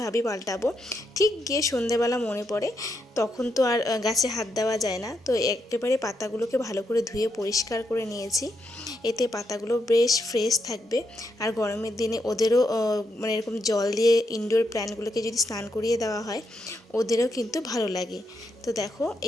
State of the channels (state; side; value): normal; both; correlation 0.81